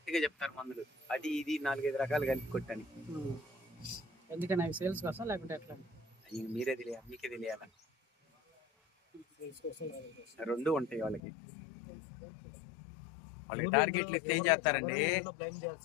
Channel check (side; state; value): right; drops out; at 11.2 s